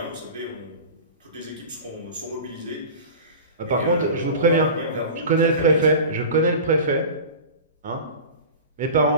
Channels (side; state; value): both; inverted; correlation -0.34